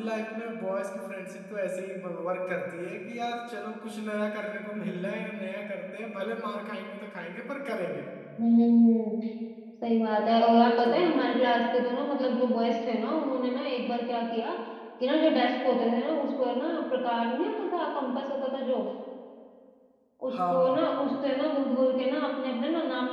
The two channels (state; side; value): identical; both; correlation 1.00